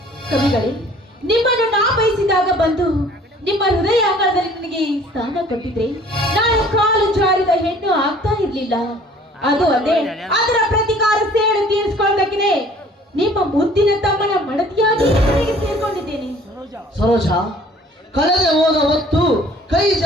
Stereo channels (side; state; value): both; normal; correlation 0.53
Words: ಕವಿಗಳೇ, ನಿಮ್ಮನ್ನು ನಾ ಬಯಸಿದಾಗ ಬಂದು ನಿಮ್ಮ ಹೃದಯ ಅಂಗಳದಲ್ಲಿ ನನಗೆ ಸ್ಥಾನ ಕೊಟ್ಟಿದ್ರೆ ನಾನು ಕಾಲು ಜಾರಿದ ಹೆಣ್ಣು ಆಗ್ತಾ ಇರ್ಲಿಲ್ಲ. ಅದು ಅದೇ, ಅದರ ಪ್ರತಿಕಾರ ಸೇಡು ತೀರಿಸಿಕೊಳ್ಳಬೇಕಿದೆ ನಿಮ್ಮ ಮುದ್ದಿನ ತಮ್ಮನ ಮಡದಿಯಾಗಿ ಸೇರ್ಕೊಂಡಿದ್ದೇನೆ. ಸರೋಜ, ಕಳೆದೆ ಹೋದ ಹೊತ್ತು ಕೈ